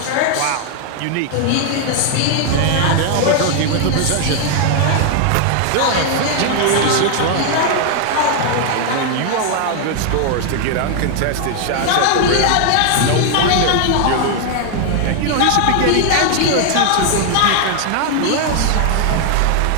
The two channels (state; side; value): different; both; correlation 0.00